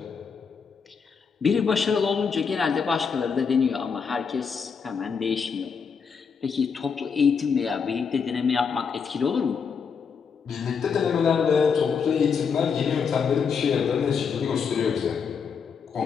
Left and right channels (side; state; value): right; quieter; 6.1 dB